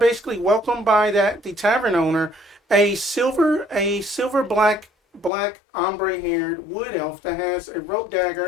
welcomed by the tavern owner, a silver black ombre haired wood elf that has a rope dagger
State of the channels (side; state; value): right; drops out; at 5.3 s